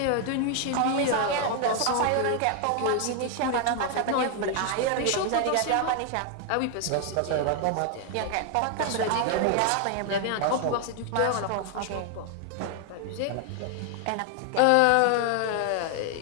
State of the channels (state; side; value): different; both; correlation 0.00